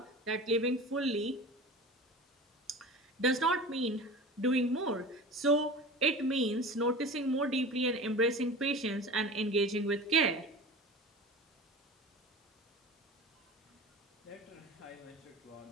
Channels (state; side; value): normal; both; correlation 0.34